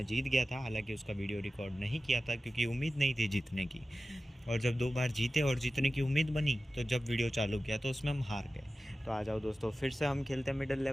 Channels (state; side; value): normal; both; correlation 0.95